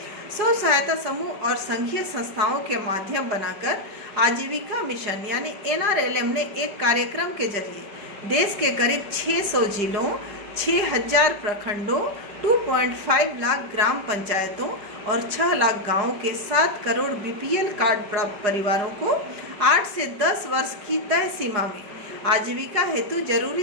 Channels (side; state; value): left; late; 4.9 ms